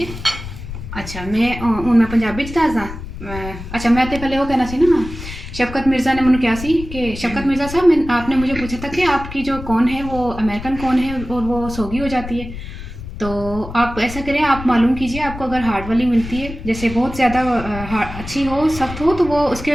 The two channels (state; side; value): noise; left; rumble, 11 dB below the sound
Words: अच्छा मैं पंजाबी च दसदा। अच्छा मैं तो पहले वो कहना सी ना, शफकत मिर्ज़ा ने मैंने कहा सी कि शफकत मिर्ज़ा साहब आपने मुझे पूछा था कि आपकी जो कौन है वो अमेरिकन कौन है और वो सोगी हो जाती है। तो आप ऐसा करें, आप मालूम कीजिए आपको अगर हार्ड वाली मिलती है, जैसे बहुत ज़्यादा अच्छी हो सख्त हो, तो वो